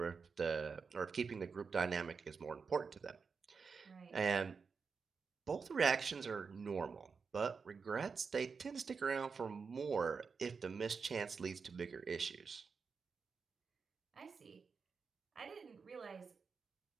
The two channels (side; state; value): left; quieter; 5.3 dB